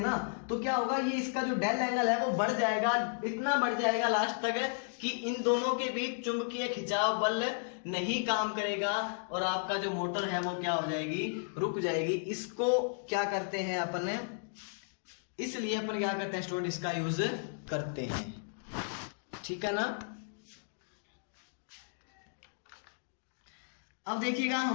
तो क्या होगा, ये इसका जो डेल एंगल है वो बढ़ जाएगा, इतना बढ़ जाएगा लास्ट तक कि इन दोनों के बीच चुंबकीय खिंचाव बल नहीं काम करेगा और आपका जो मोटर है वो क्या हो जाएगी, रुक जाएगी। इसको क्या करते हैं अपन, इसलिए अपन क्या करते हैं स्टूडेंट, इसका यूज करते हैं। ठीक है ना। अब देखिएगा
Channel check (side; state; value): right; silent; digital silence